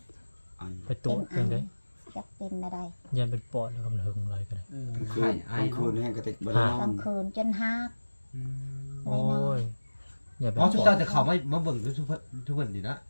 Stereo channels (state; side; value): inverted; both; correlation -1.00